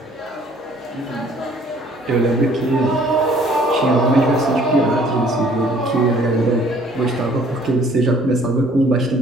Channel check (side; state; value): both; normal; correlation 0.57